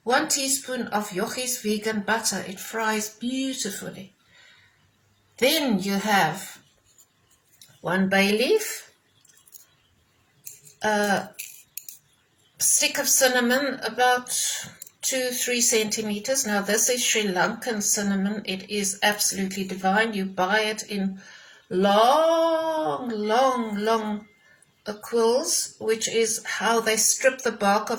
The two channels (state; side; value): identical; both; correlation 1.00